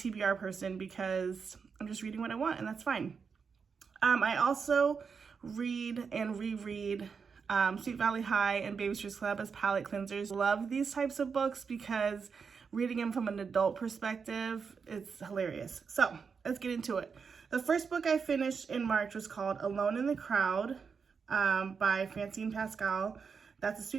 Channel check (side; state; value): left; quieter; 5.7 dB